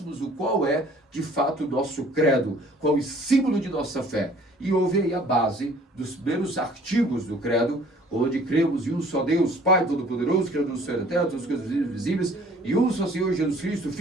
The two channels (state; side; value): normal; both; correlation 0.54